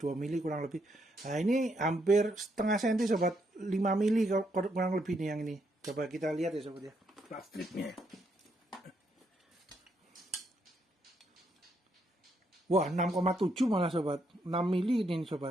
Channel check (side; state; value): both; normal; correlation 0.76